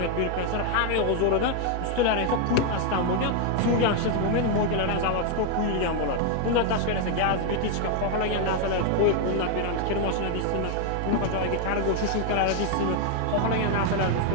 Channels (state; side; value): different; both; correlation 0.00